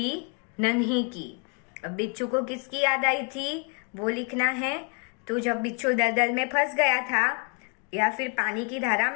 नन्ही की। अब बिच्छू को किसकी याद आई थी वो लिखना है। तो जब बिच्छू दलदल में फंस गया था या फिर पानी की धारा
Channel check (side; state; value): right; quieter; 35.6 dB